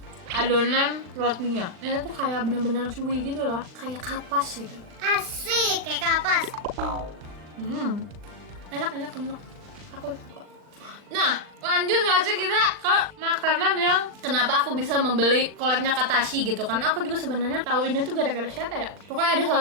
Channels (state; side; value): late; left; 39 ms